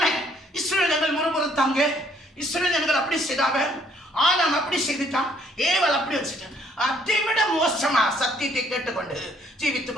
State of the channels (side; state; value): both; normal; correlation 0.65